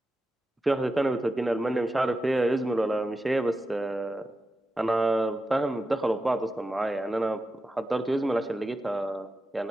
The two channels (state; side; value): normal; both; correlation 0.91